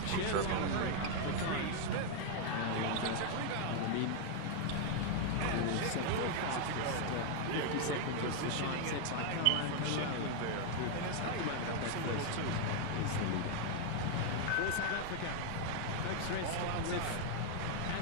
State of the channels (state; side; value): different; both; correlation 0.00